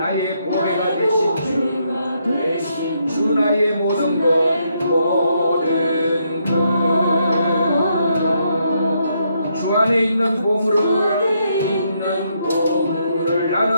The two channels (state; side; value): inverted; both; correlation -0.76